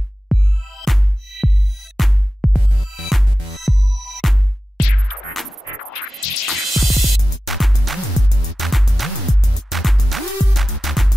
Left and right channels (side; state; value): both; normal; correlation 0.94